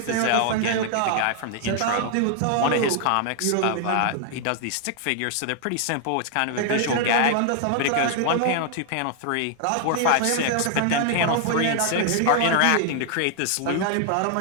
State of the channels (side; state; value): both; different; correlation 0.00